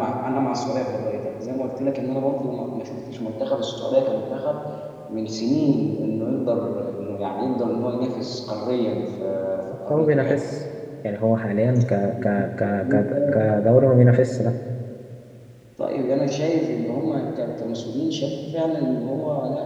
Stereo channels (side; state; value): both; identical; correlation 1.00